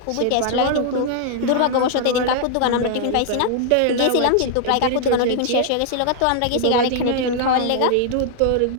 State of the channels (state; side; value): different; both; correlation -0.01